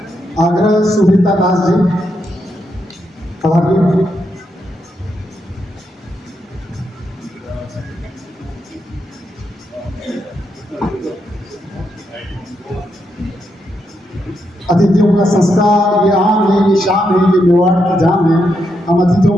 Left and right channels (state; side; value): normal; both; correlation 0.81